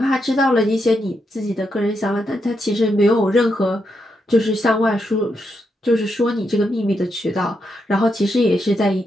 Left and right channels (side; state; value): both; normal; correlation 0.82